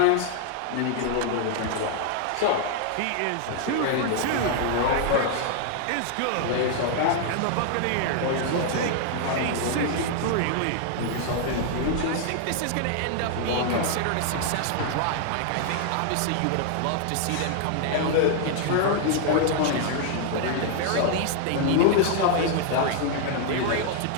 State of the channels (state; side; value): different; both; correlation 0.00